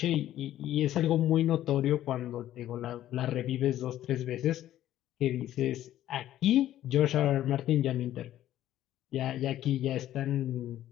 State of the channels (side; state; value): right; quieter; 12.8 dB